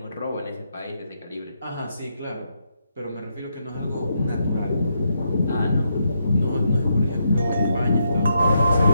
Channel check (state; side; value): inverted; both; correlation -0.80